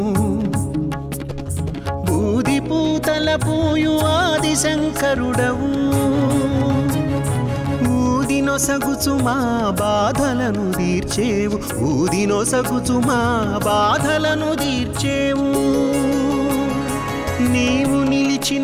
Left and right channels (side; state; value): both; identical; correlation 1.00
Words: బూది పూతల పూయు ఆది శంకరుడవు ఊదినొసగుచు మా బాధలను తీర్చేవు ఊదినొసగుచు మా బాధలను తీర్చేవు నీవు